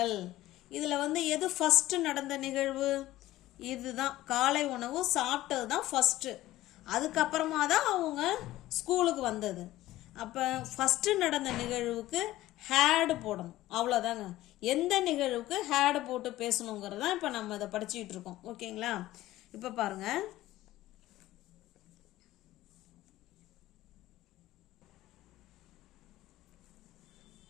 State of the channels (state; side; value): quieter; right; 15.9 dB